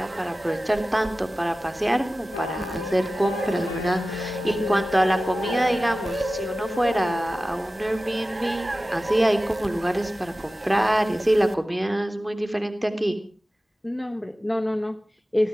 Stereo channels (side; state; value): both; normal; correlation 0.96